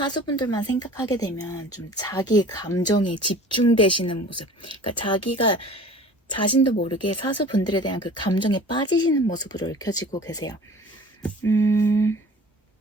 생각하게 되면 좀 자기 감정에 집중되시는 모습, 그러니까 자기가 자신도 모르게 사수분들에 대한 그 감정에 빠지시는 모습으로 읽혀지고 계세요.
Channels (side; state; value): both; normal; correlation 0.44